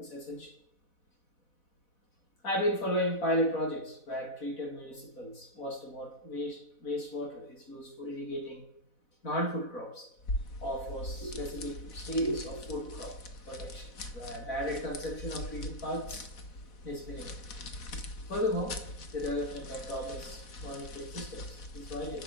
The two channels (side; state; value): right; late; 4.1 ms